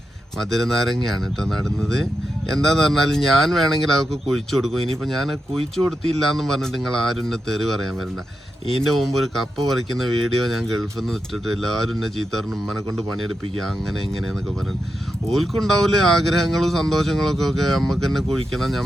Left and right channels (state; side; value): normal; both; correlation 0.87